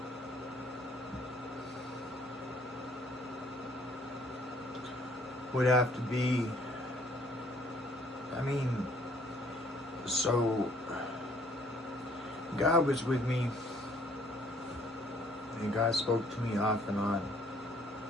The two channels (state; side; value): normal; both; correlation 0.62